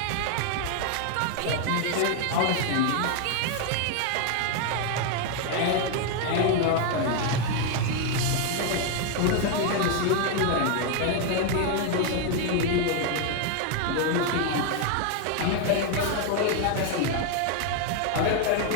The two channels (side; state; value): both; different; correlation 0.01